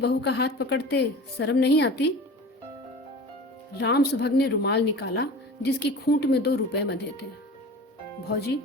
का हाथ पकड़ते शर्म नहीं आती? राम सुभग ने रुमाल निकाला जिसकी खूंट में 2 रुपए बंधे थे। भौजी,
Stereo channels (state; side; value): normal; both; correlation 0.37